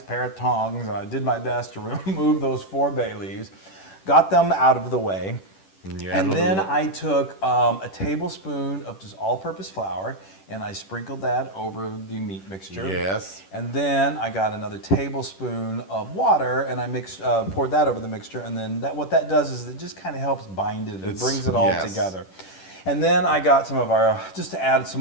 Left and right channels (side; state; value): right; late; 10 ms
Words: pair of tongs and I did my best to remove those 4 bay leaves, got them out of the way. Yeah. And then I took a tablespoon of just all-purpose flour and I sprinkled that over the meat mixture. Yes. And then I got another tablespoon of water and I poured that over the mixture. And then what that does is it just kind of helps bind it. It brings it all yes. together. And then I got some of our, just to add some